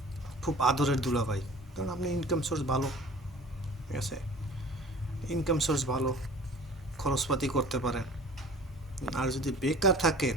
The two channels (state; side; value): normal; both; correlation 0.45